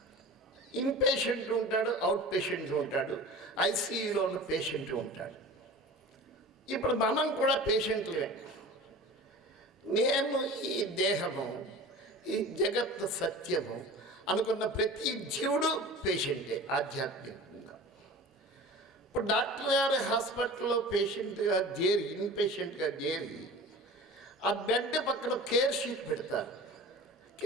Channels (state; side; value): normal; both; correlation 0.37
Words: ఇన్ పేషెంట్ ఉంటాడు, అవుట్ పేషెంట్ ఉంటాడు, ఐసీయూలో ఉన్న పేషెంట్ ఉంటాడు. ఇప్పుడు మనం కూడా పేషెంట్లే. నేను ఈ దేహము, ఈ జగత్ సత్యము అనుకున్న ప్రతి జీవుడు పేషెంటే ఆధ్యాత్మికంగా. ఇప్పుడు డాక్టర్ గారి హాస్పిటల్లో పేషెంట్గా చేరి, ఇన్ పేషెంట్గా చేరి ఆ బెడ్ పక్కన కేర్ షీట్ పెడతారు.